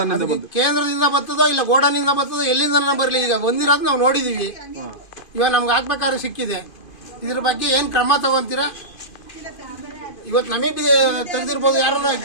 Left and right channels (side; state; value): right; late; 2.5 ms